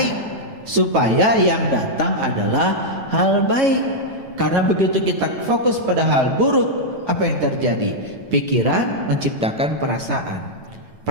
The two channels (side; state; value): left; late; 9.1 ms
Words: supaya yang datang adalah hal baik. Karena begitu kita fokus pada hal buruk, apa yang terjadi? Pikiran menciptakan perasaan,